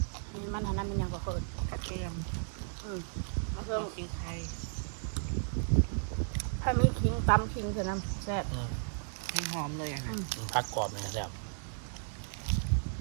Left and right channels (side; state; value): left; silent; 55 dB below the other